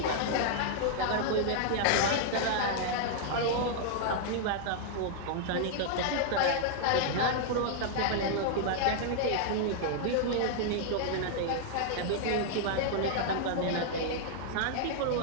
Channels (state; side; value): different; both; correlation -0.01